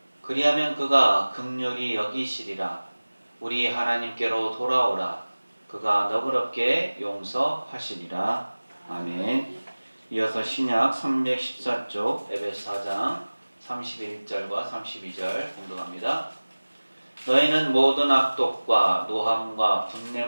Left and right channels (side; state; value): both; inverted; correlation -1.00